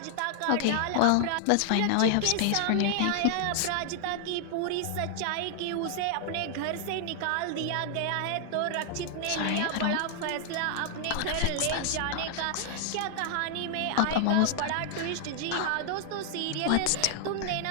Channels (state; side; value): different; both; correlation 0.00